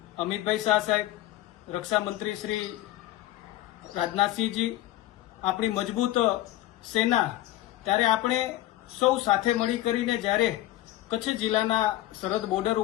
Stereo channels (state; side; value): quieter; right; 15.3 dB